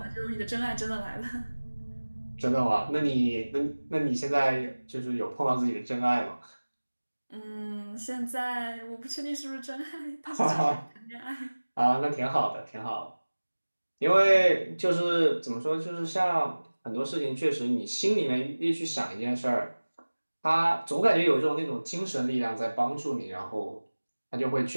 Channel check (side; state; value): both; inverted; correlation -1.00